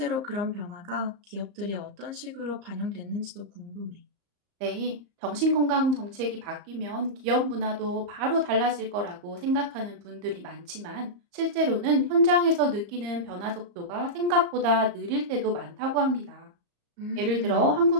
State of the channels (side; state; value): left; late; 34 ms